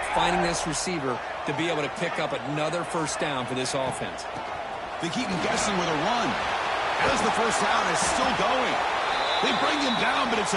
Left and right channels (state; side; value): identical; both; correlation 1.00